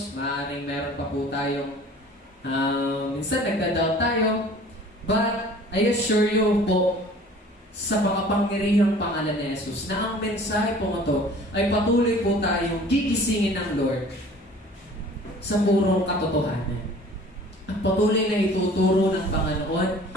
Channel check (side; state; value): both; normal; correlation 0.48